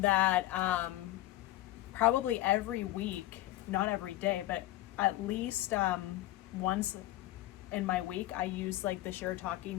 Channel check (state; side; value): quieter; right; 15.9 dB